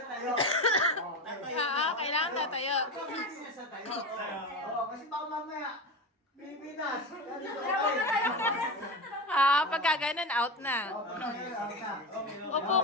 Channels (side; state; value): both; normal; correlation 0.22